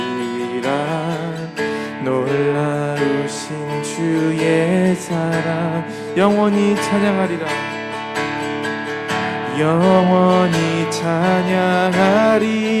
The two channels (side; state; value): both; identical; correlation 1.00